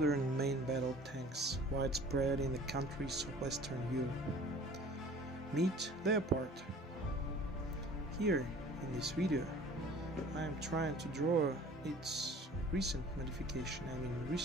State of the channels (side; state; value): both; normal; correlation 0.48